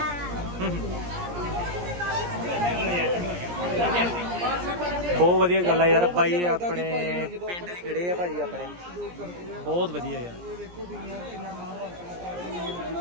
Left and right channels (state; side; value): late; left; 17 ms